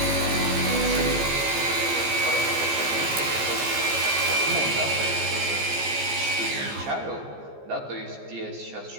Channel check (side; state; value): left; late; 14 ms